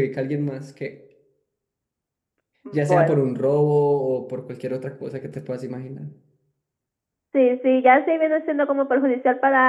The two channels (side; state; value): both; identical; correlation 1.00